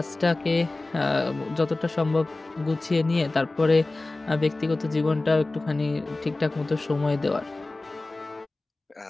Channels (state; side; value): quieter; right; 3.0 dB